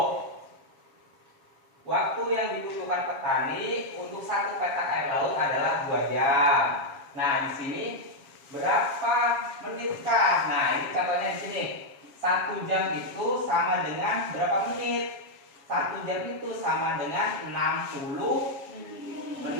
Waktu yang dibutuhkan petani untuk 1 petak air laut adalah 2 jam. Nah, di sini berapa menitkah? Nah, ini contohnya di sini. 1 jam itu sama dengan berapa menit? 1 jam itu sama dengan 60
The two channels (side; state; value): left; late; 7.2 ms